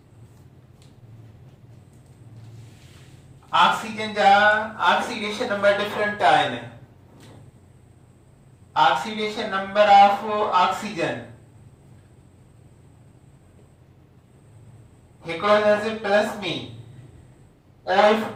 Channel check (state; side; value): identical; both; correlation 1.00